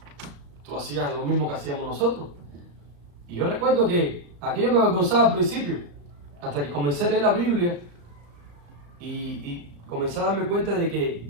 tú hacías lo mismo que hacíamos nosotros. Y yo recuerdo que aquello me avergonzaba al principio, hasta que comencé a leer la Biblia y comencé a darme cuenta de que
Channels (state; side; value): late; left; 35 ms